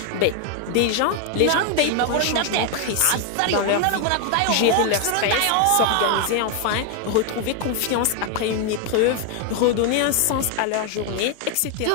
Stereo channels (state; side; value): different; both; correlation 0.01